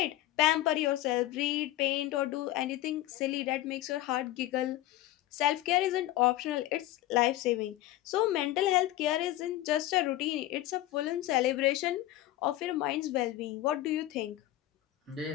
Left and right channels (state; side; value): quieter; right; 15.1 dB